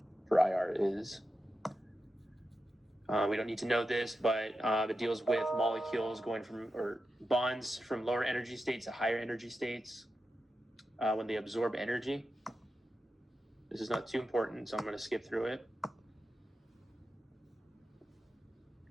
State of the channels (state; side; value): normal; both; correlation 0.90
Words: for IR is. We don't need to know this, but it deals with molecules going from, or bonds from lower energy states to higher energy states when they absorb energy. This is not too important, so I'm going to skip through it.